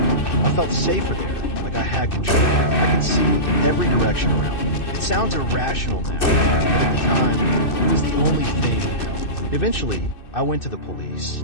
I felt safer there, like I had control. I could see every direction around me. It sounds irrational now, but at the time, it was the only thing that helped. Eventually, I went to the police.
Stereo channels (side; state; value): right; late; 2.6 ms